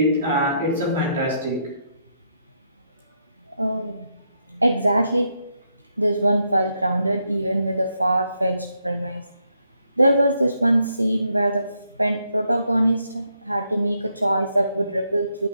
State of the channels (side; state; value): both; inverted; correlation -0.78